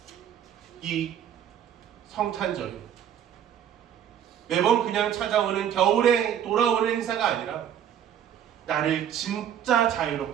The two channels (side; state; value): left; quieter; 9.5 dB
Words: 이 성탄절이 매번 그냥 찾아오는 겨울에 돌아오는 행사가 아니라 나를 진짜